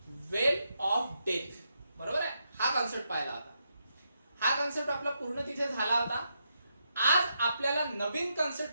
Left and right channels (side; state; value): both; inverted; correlation -0.82